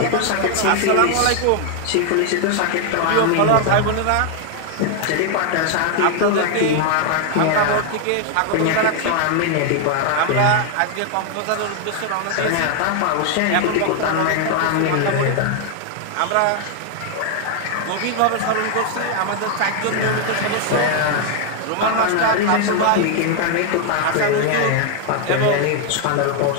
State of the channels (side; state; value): both; different; correlation 0.00